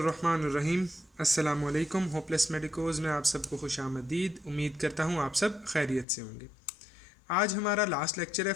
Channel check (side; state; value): right; drops out; at 6.1 s